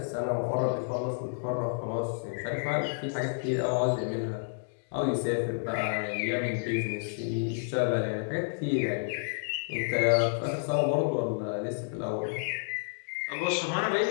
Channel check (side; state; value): right; silent; digital silence